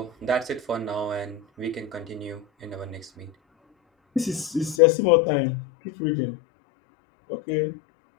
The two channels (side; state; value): right; drops out; at 4.8 s